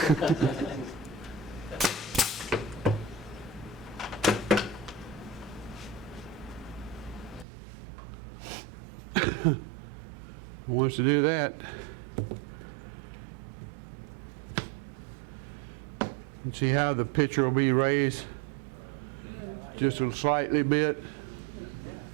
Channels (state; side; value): drops out; left; at 7.5 s